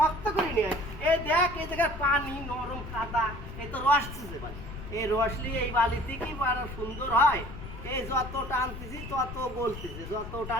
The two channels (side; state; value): left; noise; rumble, 10 dB below the sound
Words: করে নিয়ে এই দেখ, এই জায়গায় পানি নরম কাদা, এই তো রস দিছে বালি। এই রস নিয়ে এই বালিতে কি আরো সুন্দর হয়। এই যত টানতেছি তত বলতেছে, যত